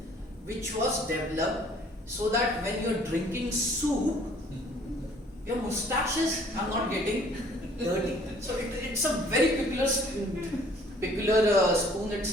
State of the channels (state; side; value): normal; both; correlation 0.57